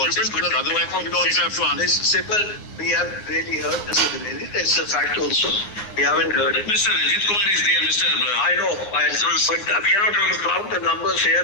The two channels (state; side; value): late; right; 9.6 ms